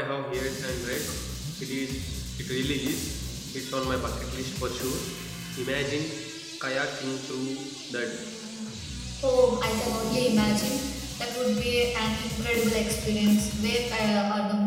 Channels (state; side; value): identical; both; correlation 1.00